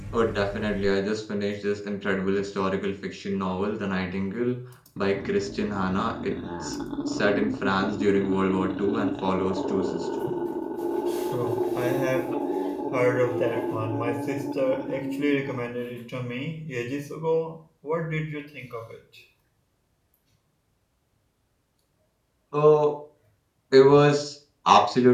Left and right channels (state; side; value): identical; both; correlation 1.00